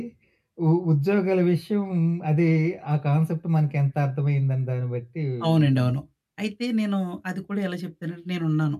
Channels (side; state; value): both; identical; correlation 1.00